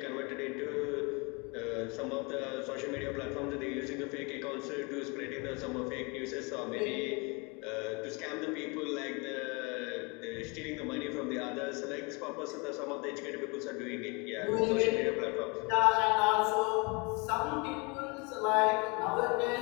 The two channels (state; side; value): quieter; right; 30.2 dB